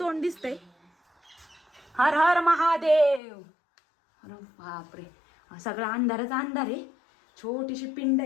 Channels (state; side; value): drops out; right; at 3.2 s